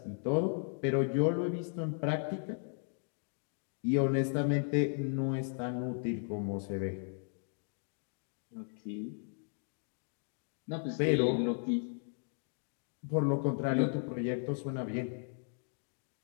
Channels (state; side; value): silent; right; 54 dB below the other